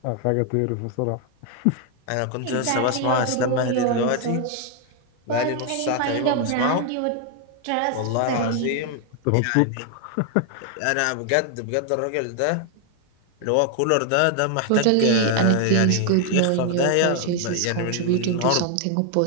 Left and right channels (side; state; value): both; different; correlation 0.00